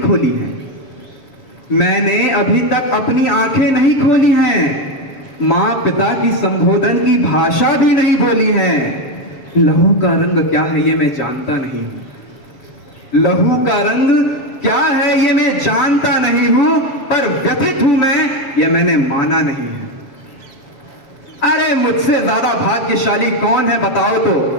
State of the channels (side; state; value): right; late; 7.2 ms